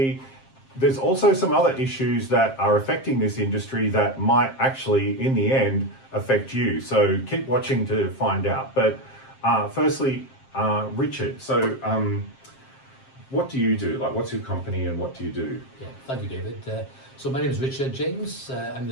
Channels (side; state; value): right; late; 7.5 ms